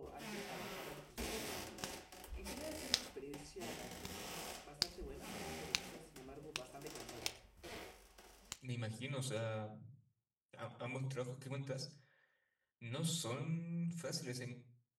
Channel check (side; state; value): both; identical; correlation 1.00